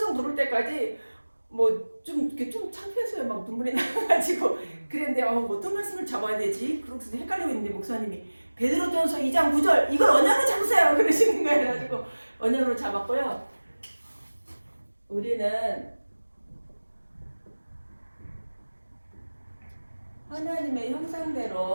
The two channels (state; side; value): inverted; both; correlation -1.00